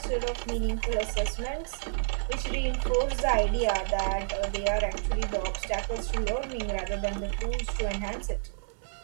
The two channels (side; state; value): left; silent; digital silence